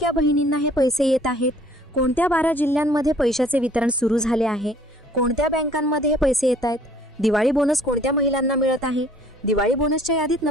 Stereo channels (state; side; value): normal; both; correlation 0.56